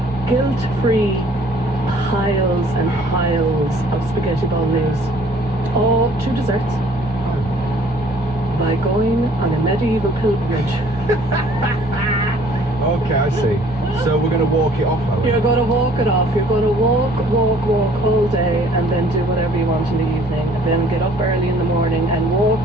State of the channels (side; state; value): both; normal; correlation 0.56